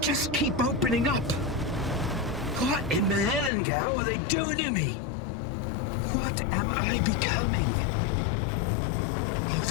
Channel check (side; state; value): right; drops out; at 3.5 s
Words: just keep opening up. What in the hell are they doing to me? What am I becoming? Oh,